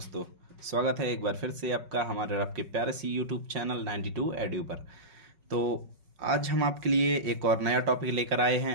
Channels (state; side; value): late; left; 5.4 ms